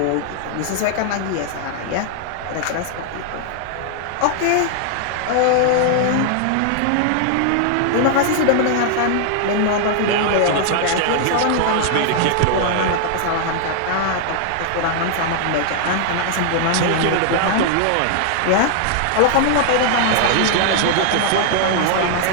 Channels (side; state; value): both; different; correlation 0.00